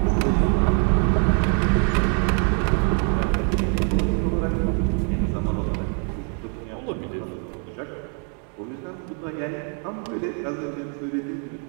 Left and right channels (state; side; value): quieter; left; 38.1 dB